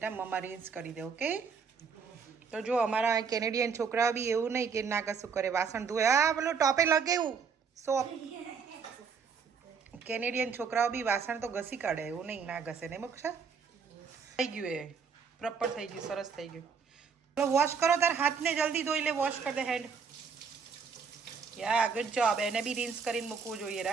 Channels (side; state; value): left; quieter; 5.9 dB